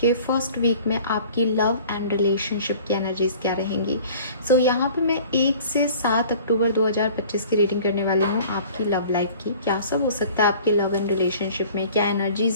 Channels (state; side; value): inverted; both; correlation -0.48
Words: के first week में आपकी लव एंड रिलेशनशिप की एनर्जीज क्या रहेंगी। सो यहाँ पे मैं 1 से 7 अक्टूबर 2025 की रीडिंग करने वाली हूँ आपकी लव लाइफ की। क्या सब हो सकता है आपके लव एंड रिलेशनशिप में, क्या